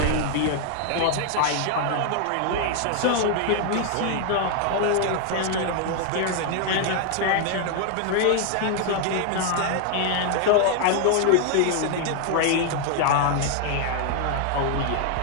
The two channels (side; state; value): both; different; correlation 0.00